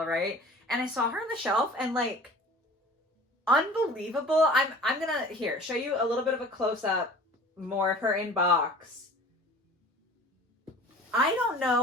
right? And I saw her on the shelf and unbelievable. I'm gonna here show you a little bit of a close-up more of her in box. I don't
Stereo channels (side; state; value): both; normal; correlation 0.44